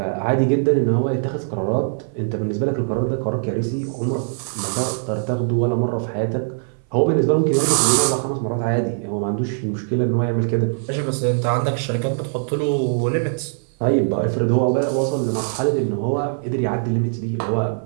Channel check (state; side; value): silent; left; 59 dB below the other